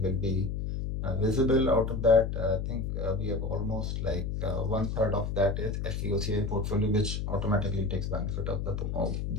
will be visible out of that. I think we have almost like one third of that is FVOCI portfolio, which automatically takes benefit of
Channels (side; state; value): left; noise; hum, 2 dB below the sound